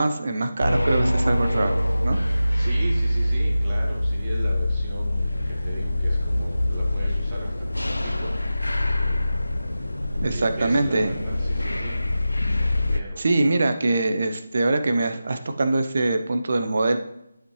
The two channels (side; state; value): both; inverted; correlation -0.93